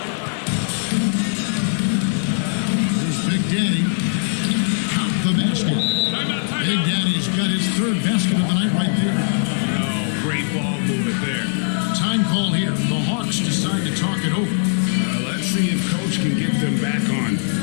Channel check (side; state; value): right; silent; 55 dB below the other